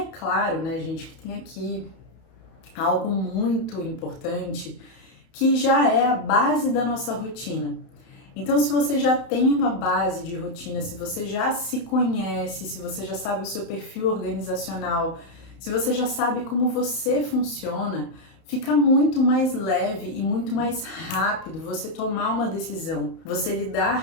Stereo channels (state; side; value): late; right; 31 ms